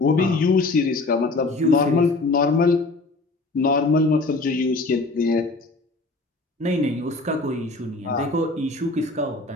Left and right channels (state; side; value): quieter; right; 3.3 dB